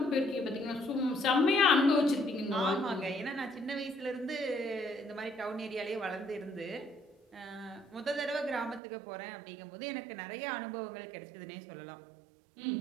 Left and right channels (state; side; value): drops out; left; at 8.8 s